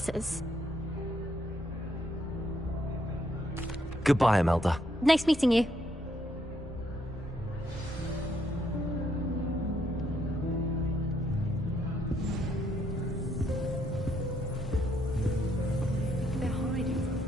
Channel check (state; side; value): normal; both; correlation 0.73